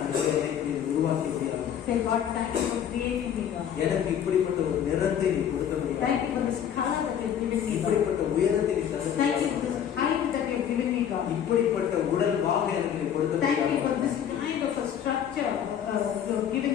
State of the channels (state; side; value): quieter; right; 9.1 dB